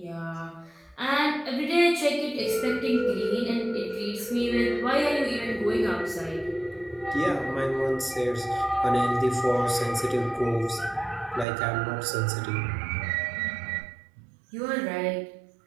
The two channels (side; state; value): left; drops out; at 11.5 s